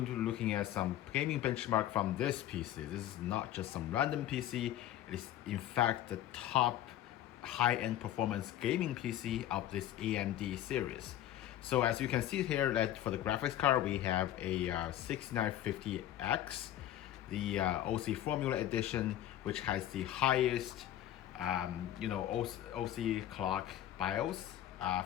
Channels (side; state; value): right; quieter; 12.6 dB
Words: to be looking at some gaming benchmark from this PC. This is not just some random PC, it is in fact the top high-end performance gaming PC of this AMD series. So as you can see here, that for the graphics card we have a 6950X, the OC Formula Edition, which has the highest OC clock BIOS